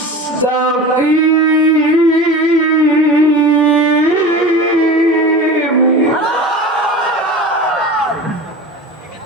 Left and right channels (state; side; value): normal; both; correlation 0.34